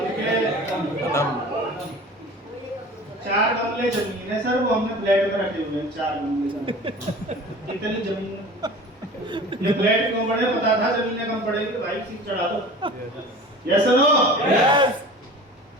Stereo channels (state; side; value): normal; both; correlation 0.40